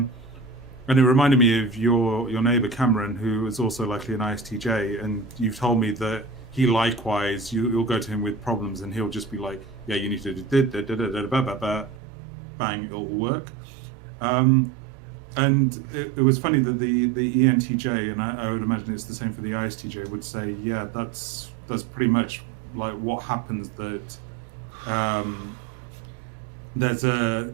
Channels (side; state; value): left; drops out; at 12.0 s